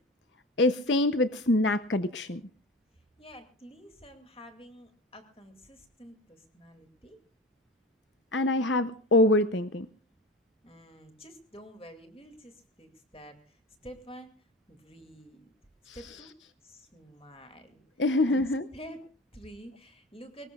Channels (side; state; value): both; normal; correlation 0.32